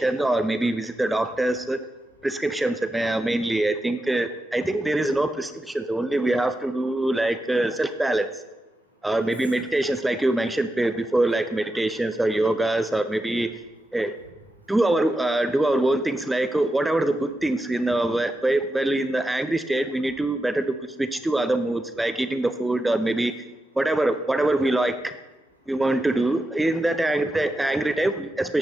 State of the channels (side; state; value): both; normal; correlation 0.88